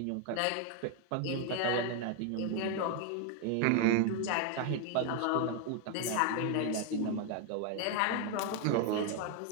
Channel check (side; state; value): both; different; correlation 0.00